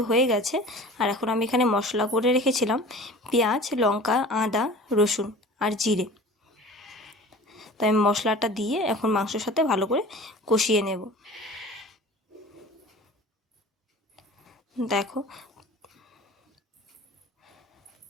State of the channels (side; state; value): both; normal; correlation 0.41